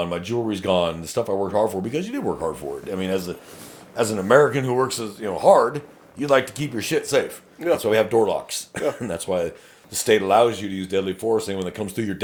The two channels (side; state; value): both; identical; correlation 1.00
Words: my jewelry's gone, the stuff I worked hard for, because you did work hard for it. I mean, as an American who works hard, you'd like to keep your shit safe. Yeah. That's why we have door locks. Yeah. And that's why the state allows you to use deadly force when it comes through your